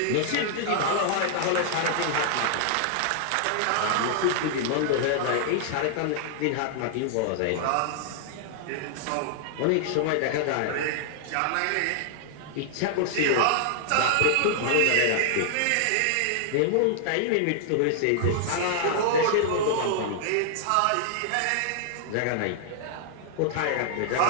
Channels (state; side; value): different; both; correlation -0.01